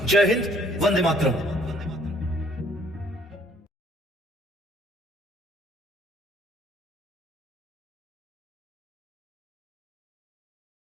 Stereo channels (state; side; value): normal; both; correlation 0.61